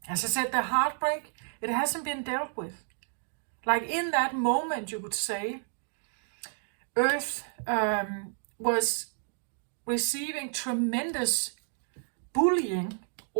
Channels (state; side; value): silent; left; 57 dB below the other